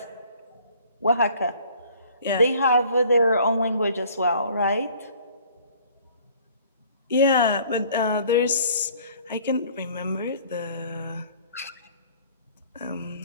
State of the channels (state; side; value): inverted; both; correlation -0.54